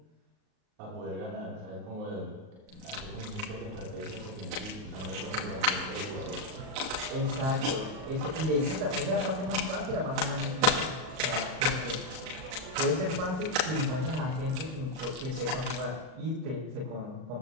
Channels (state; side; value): late; left; 38 ms